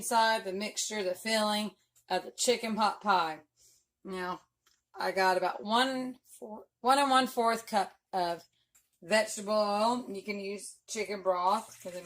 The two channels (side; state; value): both; identical; correlation 1.00